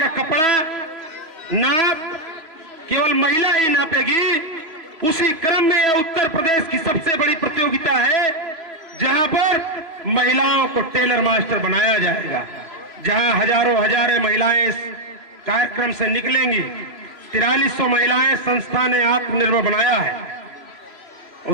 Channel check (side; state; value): left; late; 3.1 ms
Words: कपड़ा नाप केवल महिला ही नापेगी। उसी क्रम में यह उत्तर प्रदेश की सबसे बड़ी प्रतियोगिता है जहां पर महिलाओं को टेलर मास्टर बनाया जाएगा, जहां हजारों हजारें महिलाएं इस कार्यक्रम से निकलेंगी। 4300 महिलाएं संस्था ने आत्मनिर्भर बनाया है।